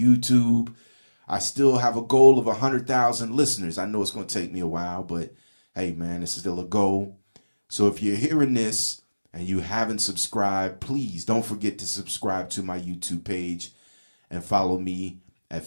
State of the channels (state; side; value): inverted; both; correlation -1.00